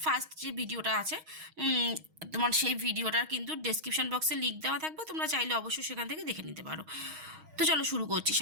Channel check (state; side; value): late; left; 6.3 ms